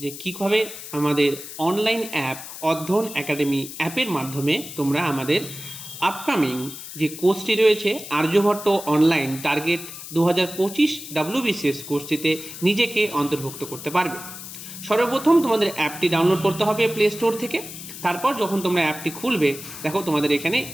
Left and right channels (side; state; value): left; noise; hiss, 12 dB below the sound